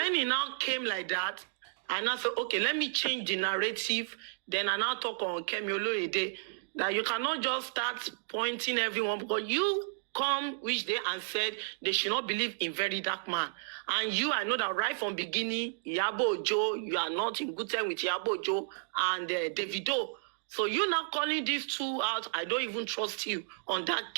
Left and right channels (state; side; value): silent; left; digital silence